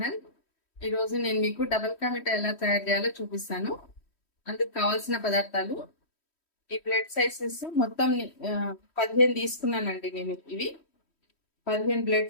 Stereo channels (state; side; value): late; right; 3.1 ms